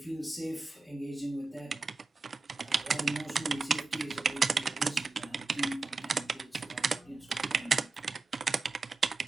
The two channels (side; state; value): left; quieter; 3.8 dB